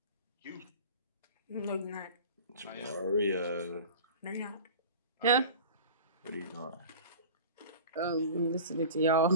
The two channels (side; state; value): both; inverted; correlation -0.38